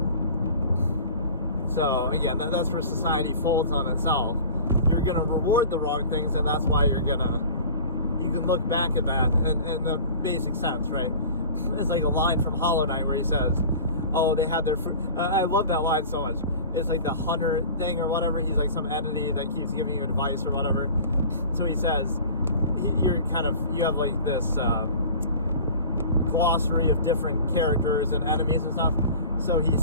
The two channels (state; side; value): inverted; both; correlation -0.41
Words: So again, that's where society folds on itself. You're gonna reward the wrong things, and that's why you can look back at that in the basic sense, right? It's like a line from Hollow Knight where he says, oh, they had their fruit. I love that line so much. It's like the hunter thing or whatever. He's like some entity that keeps giving you advice or whatever. So he says, you have like this glossary of different characters and enemies and stuff. So he